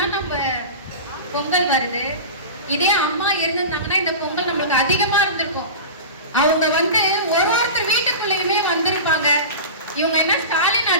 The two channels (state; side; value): inverted; both; correlation -0.30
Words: நம்ம பொங்கல் வருது. இதே அம்மா இருந்திருந்தாங்கன்னா இந்த பொங்கல் நம்மளுக்கு அதிகமா இருந்திருக்கும். அவங்க ஒருத்தர் வீட்டுக்குள்ளேயுமே வந்திருப்பாங்க. இவங்க என்ன ஸ்டாலின்